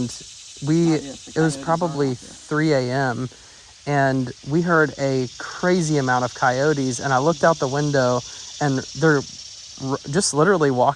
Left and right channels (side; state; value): both; identical; correlation 1.00